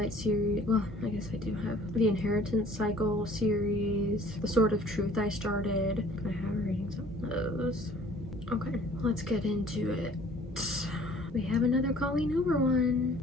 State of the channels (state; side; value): normal; both; correlation 0.53